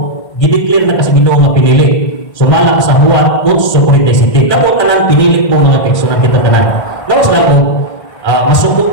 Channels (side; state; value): right; late; 1.6 ms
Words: gideklar na kasi Ginoo nga pinili. Sumala sa Juan 8:47. Kamo tanan pinili mo mga kaigsunan kita tanan. Lawas lang ko, masukot